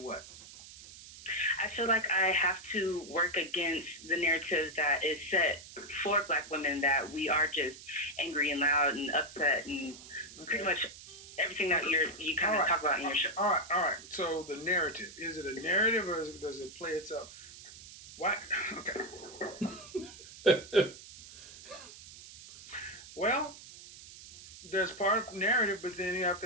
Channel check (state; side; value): noise; right; hiss, 17 dB below the sound